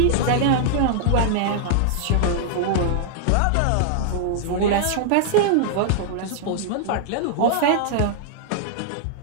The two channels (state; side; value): different; both; correlation -0.01